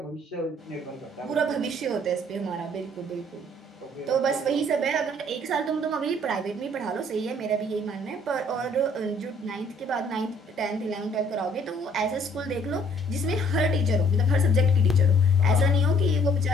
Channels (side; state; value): both; normal; correlation 0.61